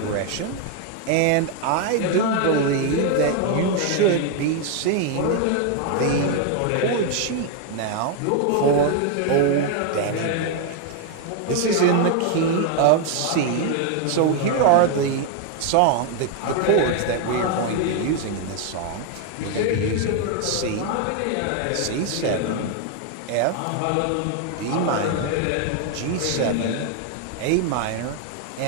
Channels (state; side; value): different; both; correlation 0.01